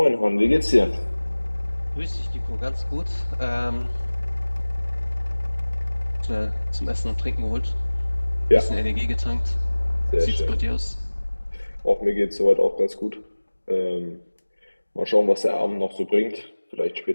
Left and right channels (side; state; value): both; inverted; correlation -1.00